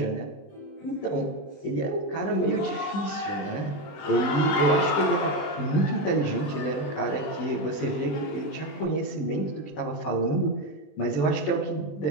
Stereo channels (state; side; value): late; right; 20 ms